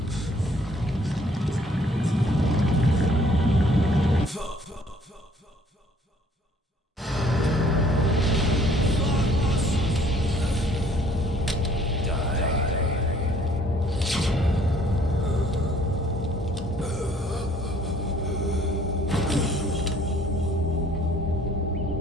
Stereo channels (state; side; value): normal; both; correlation 0.59